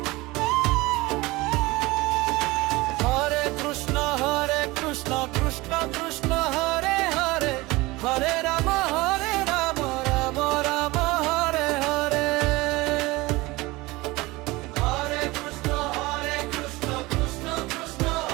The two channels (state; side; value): quieter; left; 21.4 dB